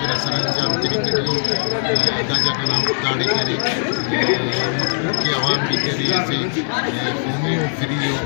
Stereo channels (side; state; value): right; silent; digital silence